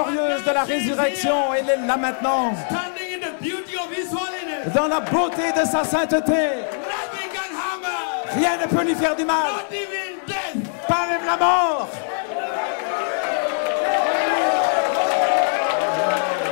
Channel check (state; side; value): silent; right; digital silence